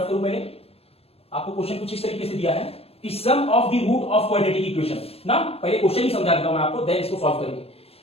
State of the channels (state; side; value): late; right; 0.29 ms